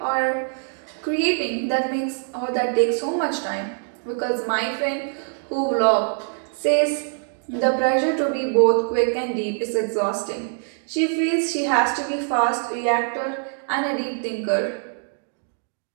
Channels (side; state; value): left; silent; 59 dB below the other